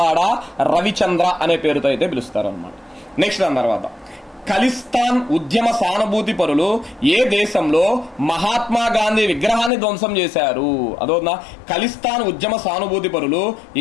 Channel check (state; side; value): drops out; right; at 9.7 s